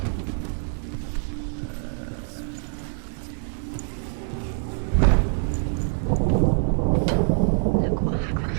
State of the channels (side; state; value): left; silent; digital silence